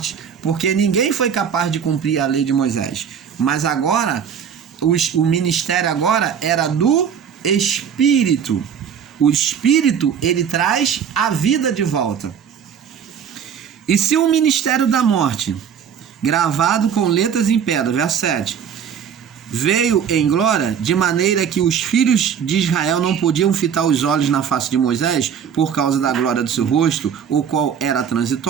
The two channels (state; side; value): quieter; left; 7.8 dB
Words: porque ninguém foi capaz de cumprir a lei de Moisés. Mas agora, o ministério agora era do Espírito. O Espírito, ele traz a vida de volta. E se o ministério da morte, gravado com letras em pedra, verso 7, veio em glória, de maneira que os filhos de Israel não podiam fitar os olhos na face de Moisés, por causa da glória do seu rosto, o qual era